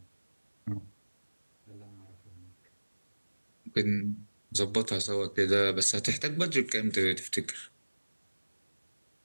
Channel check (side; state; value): both; inverted; correlation -1.00